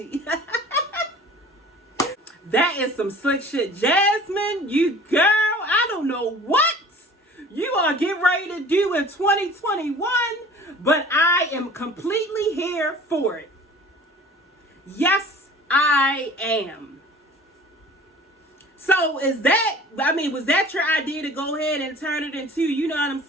That is some slick shit. Jasmine, you girl, I don't know what you are getting ready to do in 2021, but I am completely here for it. Yes, I am. So was that your idea to go ahead and turn it into, you know what I'm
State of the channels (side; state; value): both; normal; correlation 0.45